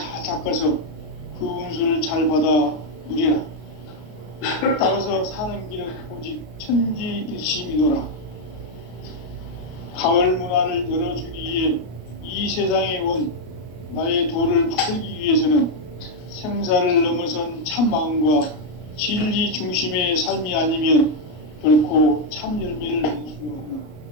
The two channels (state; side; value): late; right; 33 ms